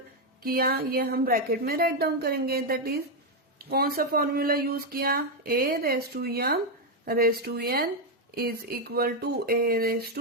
किया, ये हम ब्रैकेट में राइट डाउन करेंगे। दैट इज कौन सा फॉर्मूला यूज किया, a raise to m raise to n is equal to a raise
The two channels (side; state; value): both; normal; correlation 0.04